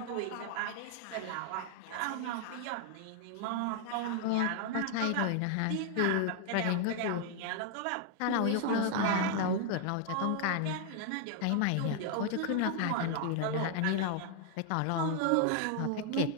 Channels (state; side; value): different; both; correlation 0.00